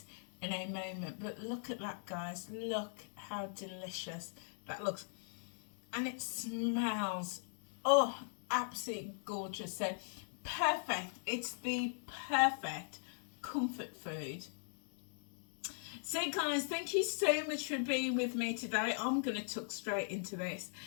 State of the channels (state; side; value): silent; right; digital silence